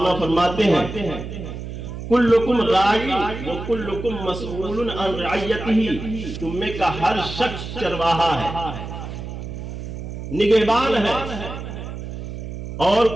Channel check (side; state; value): right; noise; hum, 8 dB below the sound